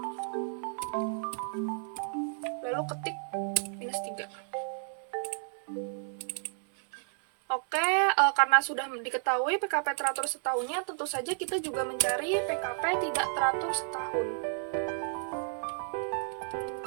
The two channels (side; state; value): left; silent; 57 dB below the other